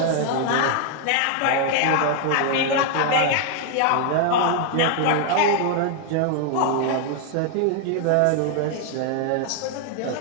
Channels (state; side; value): different; both; correlation 0.00